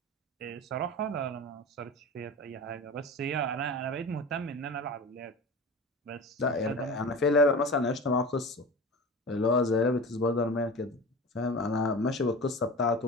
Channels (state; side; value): normal; both; correlation 0.33